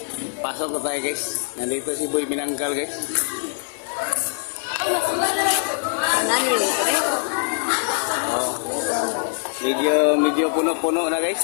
Pasok na tayo guys. Nandito si Boy Binangkal guys. Oh. Medyo puno-puno na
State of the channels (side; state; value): right; silent; 61 dB below the other